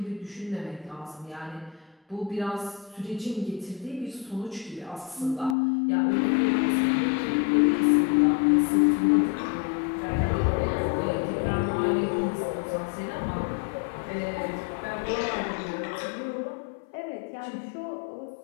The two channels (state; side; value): drops out; right; at 5.6 s